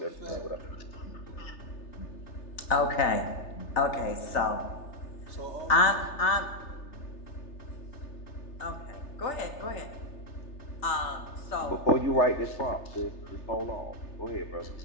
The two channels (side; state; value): right; late; 3.3 ms